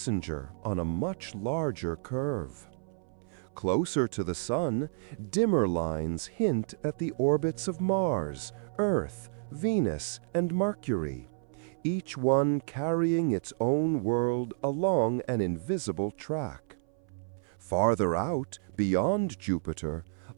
on a much larger curve. Closer to the Sun, dimmer lines hint at the orbits of Mars, Earth, Venus, and Mercury, each one carrying its own world along an invisible track. Farther out, beyond Jupiter,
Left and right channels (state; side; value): silent; left; 57 dB below the other